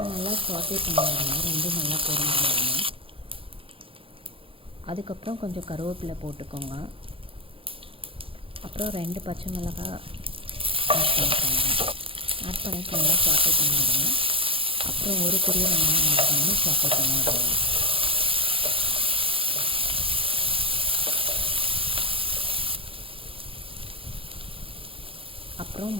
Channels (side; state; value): left; late; 0.26 ms